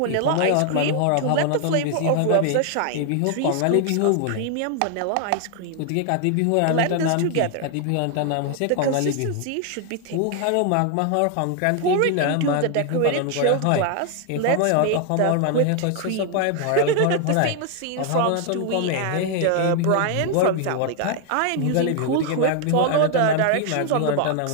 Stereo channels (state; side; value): different; both; correlation 0.00